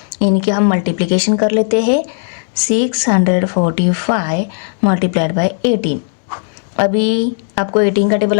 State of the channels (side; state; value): right; silent; 60 dB below the other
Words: इनकी हम मल्टीप्लिकेशन कर लेते हैं। 645 मल्टीप्लाइड बाय 18। अभी आपको 18 का टेबल